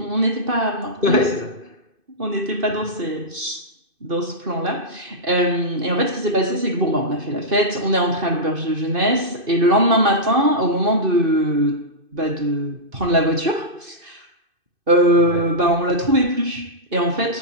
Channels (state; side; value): late; left; 2.5 ms